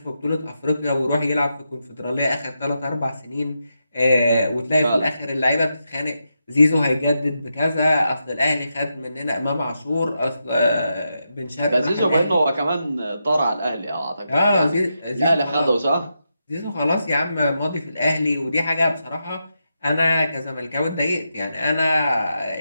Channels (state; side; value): inverted; both; correlation -0.85